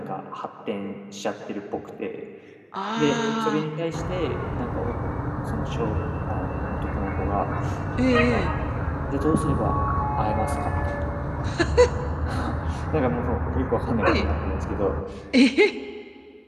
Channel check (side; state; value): both; identical; correlation 1.00